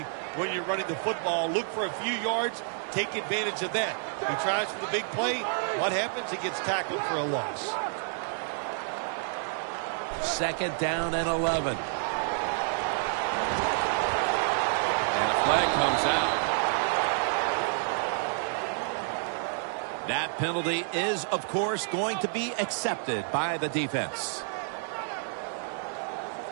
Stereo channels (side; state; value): left; silent; 58 dB below the other